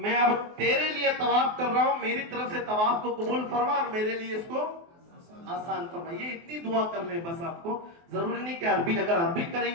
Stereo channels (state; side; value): late; left; 24 ms